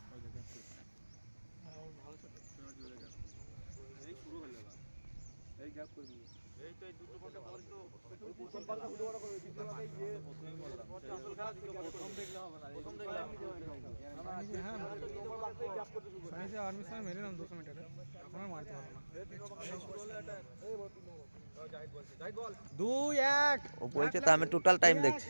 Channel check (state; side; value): inverted; both; correlation -1.00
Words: এই শুরু হয়ে গেল এই গ্যাপ করে দিই এই তো এই দুটো ঘন্টা পর তো প্রথম পাল্টা ভিডিও বড় করে দ্বিতীয় পাল্টা গিয়ে প্রথমেই বললাম আসল খেলা দিকে প্রথম দেখলে হবে না প্রথম দেখলে আমি হ্যাঁ গ্যাপ করতে শুরু করি আমি আর্মি সামনে মেরে নাম 200 মিটারে এখন আর মারতে পারবো না এই বল জাহিদ বলছে জাহিদ বল 2 1 ও বলছে তো আমি টোটাল টাইম দেখছি